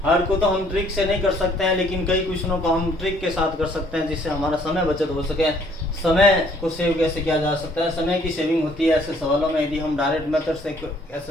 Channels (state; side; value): normal; both; correlation 0.62